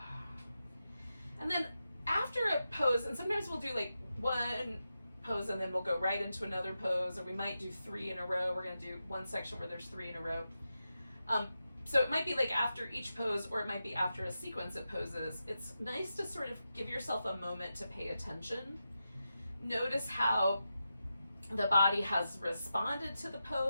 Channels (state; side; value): inverted; both; correlation -0.89